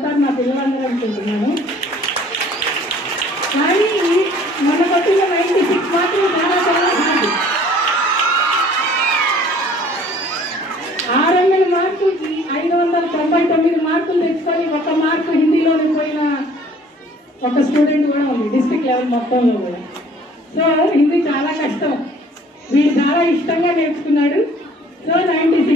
నా పిల్లలందరూ అనుకుంటున్నాను. కానీ మన కొట్టిన 96 మార్కులు చాలా చాలా హార్డ్. 600 మార్కులకి 599 మార్కులు తెచ్చుకొని 1 మార్కు హిందీలోకి పోయిన ఒక స్టూడెంట్ కూడా ఉంది డిస్ట్రిక్ట్ లెవెల్ మొత్తంలో కూడా. సో హిందీ చాలా కష్టం. వీడు చాలా ఇష్టంగా నేర్చుకున్నాడు. సో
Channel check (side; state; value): both; normal; correlation 0.54